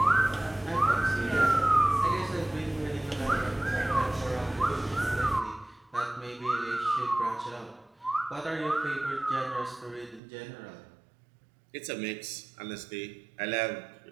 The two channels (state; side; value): drops out; left; at 10.2 s